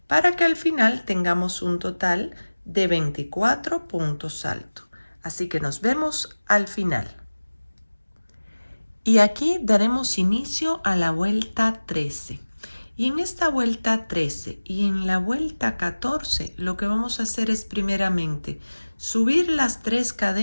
para que al final tengamos un total de 24 puntos altos. Así que nos vemos al final. Y aquí daremos inicio a la vuelta 13. Y en esta vuelta 13 y en la vuelta 14 lo que vamos a hacer es primeramente subir las 3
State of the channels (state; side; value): inverted; both; correlation -1.00